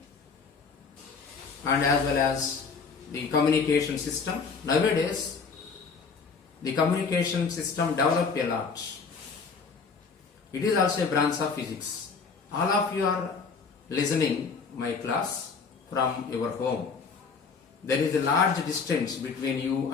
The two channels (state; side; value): quieter; right; 5.2 dB